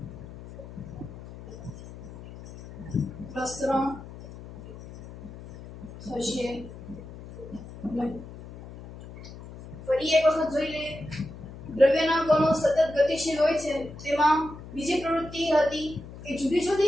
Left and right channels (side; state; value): left; noise; hum, 14 dB below the sound